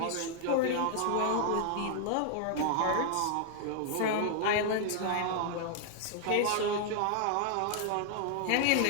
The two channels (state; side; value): different; both; correlation 0.00